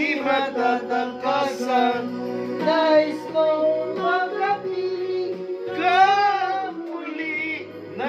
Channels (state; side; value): identical; both; correlation 1.00